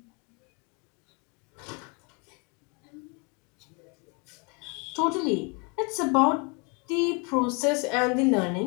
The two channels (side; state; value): right; quieter; 32.9 dB